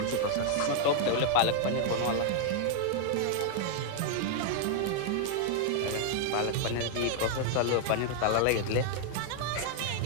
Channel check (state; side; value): different; both; correlation -0.01